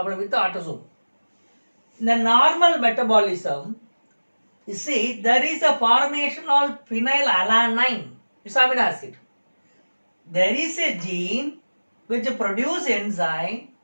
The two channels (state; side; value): inverted; both; correlation -1.00